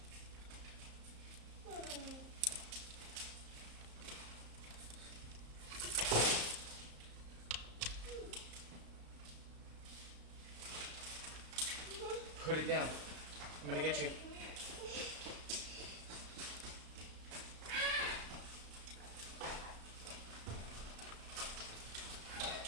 Put it down. I'm gonna get you.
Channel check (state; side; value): late; left; 34 ms